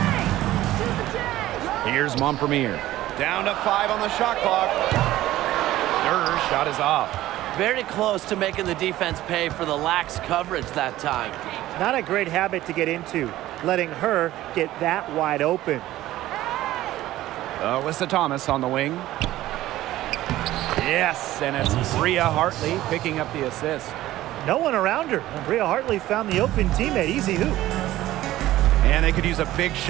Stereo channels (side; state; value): left; quieter; 15.2 dB